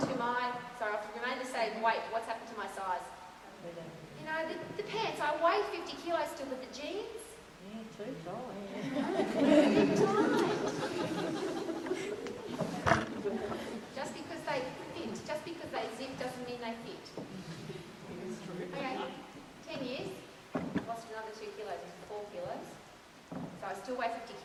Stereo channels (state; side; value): identical; both; correlation 1.00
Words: to I've remained the same weight, what's happened to my size? You know, the pants, I weigh 50 kilos still with the jeans. Yeah, too tall, Just because they fit, just because they zip doesn't mean they fit. Okay, 10 years, lost another 2 kilos, 4 kilos. So I still weigh 50